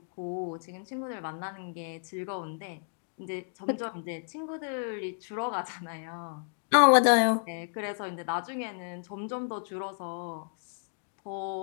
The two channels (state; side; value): silent; right; digital silence